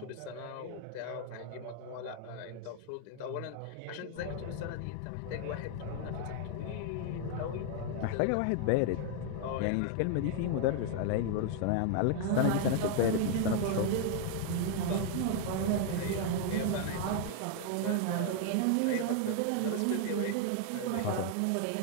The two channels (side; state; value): both; different; correlation 0.00